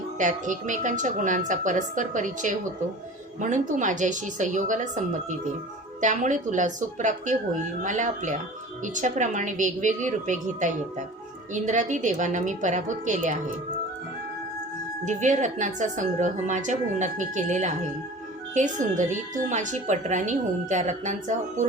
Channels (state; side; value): normal; both; correlation 0.40